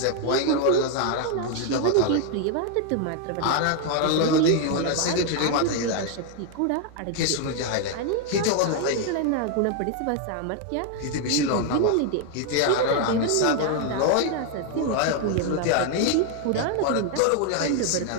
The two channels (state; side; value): different; both; correlation 0.00